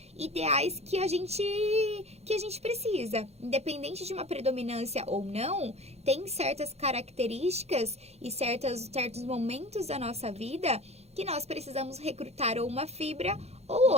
ideais que a gente precisa. Independente de uma predominância ou não, tem certas características e certos momentos da nossa vida que nós precisamos recrutar ou uma fibra ou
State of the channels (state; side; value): late; left; 0.31 ms